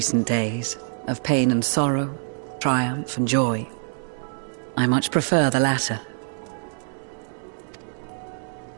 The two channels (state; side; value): silent; left; 62 dB below the other